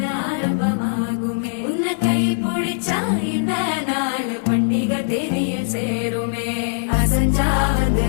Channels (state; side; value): silent; right; 59 dB below the other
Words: ஆரம்பமாகுமே உன்னை கை பிடிச்சா இந்த நாள் பண்டிகை தெரிய சேருமே அசஞ்சா வந்து